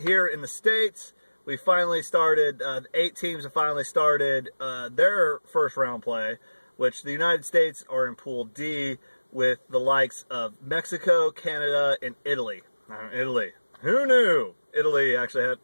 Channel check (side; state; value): both; inverted; correlation -1.00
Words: in the States, we finally started, 8 teams have finally started their first round play, which the United States are in Pool D with the likes of Mexico, Canada, and Italy. Italy. Who knew? Italy actually had